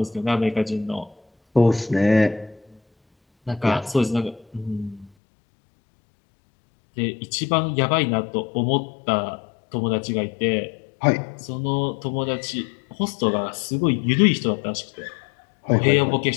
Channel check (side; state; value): right; drops out; at 5.1 s